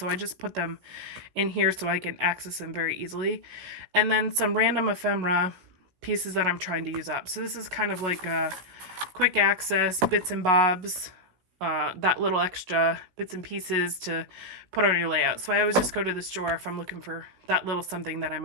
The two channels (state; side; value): late; left; 16 ms